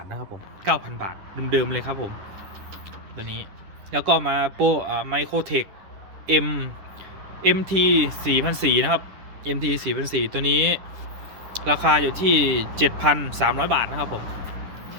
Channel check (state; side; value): late; left; 10 ms